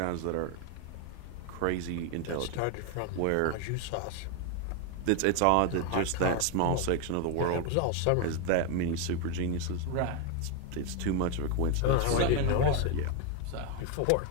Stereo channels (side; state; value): both; different; correlation 0.01